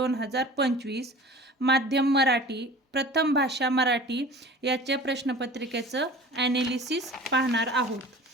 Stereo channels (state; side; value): normal; both; correlation 0.41